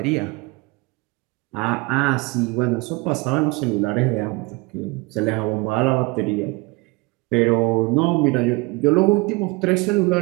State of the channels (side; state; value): left; quieter; 24.8 dB